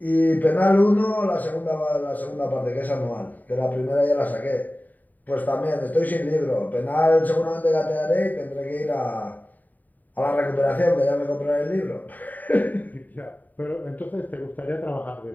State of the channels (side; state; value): right; late; 0.084 ms